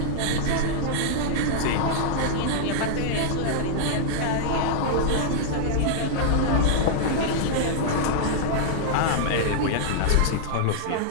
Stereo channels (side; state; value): both; different; correlation -0.01